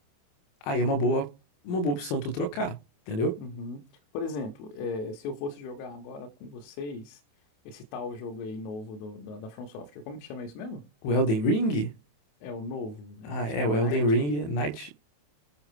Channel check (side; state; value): right; late; 27 ms